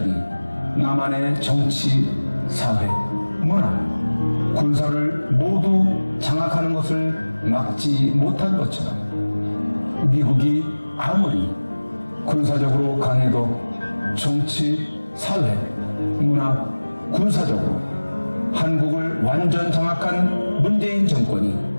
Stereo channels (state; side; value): inverted; both; correlation -1.00